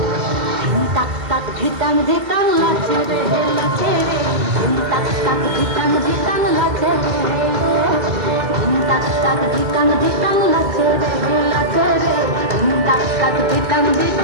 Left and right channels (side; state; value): left; late; 2.1 ms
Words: তাক তাক ধিতাম ধিতাম লাচে রে লাচে রে তাক তাক ধিতাম ধিতাম লাচে রে তাক তাক ধিতাম ধিতাম লাচে রে লাচে রে তাক তাক ধিতাম